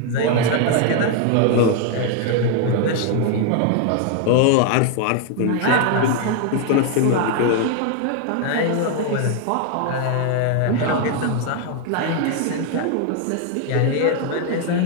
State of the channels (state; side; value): different; both; correlation 0.00